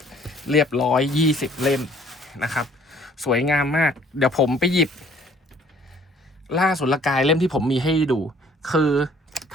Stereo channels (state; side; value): normal; both; correlation 0.58